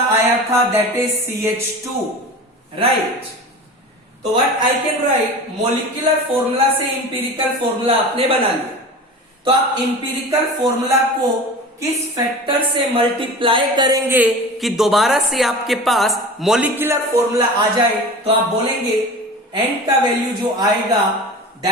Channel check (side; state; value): both; normal; correlation 0.34